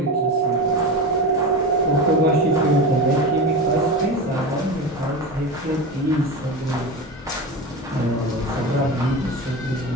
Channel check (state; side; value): normal; both; correlation 0.25